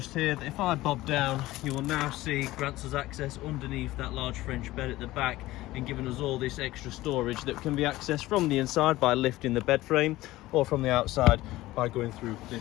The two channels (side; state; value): right; quieter; 17.4 dB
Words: here that if I bob down, you will now see grants us access underneath that large French bed at the back, and giving us all this extra storage that can be accessed from the inside by lifting the bed frame, or from the outside by going through